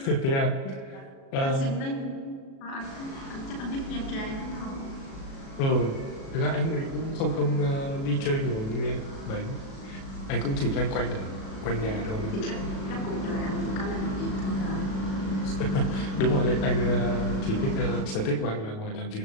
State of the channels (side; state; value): right; late; 37 ms